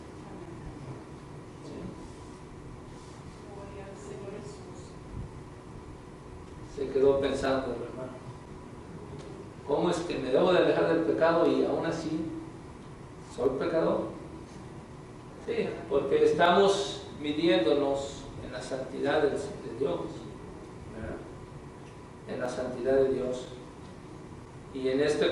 Se quedó pensando el hermano, ¿cómo es que me debo de alejar del pecado y aún así soy pecador? Sí, porque estamos midiéndonos en la santidad de Dios, ¿verdad? En la santidad de Dios. Y en este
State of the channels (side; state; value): both; identical; correlation 1.00